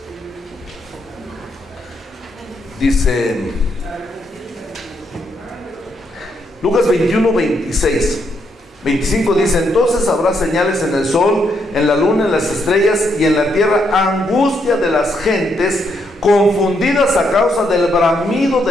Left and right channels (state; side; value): normal; both; correlation 0.76